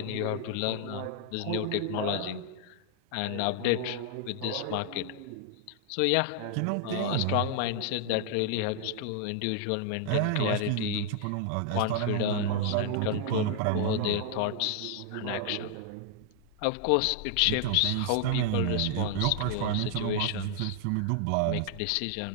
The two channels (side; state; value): both; different; correlation 0.00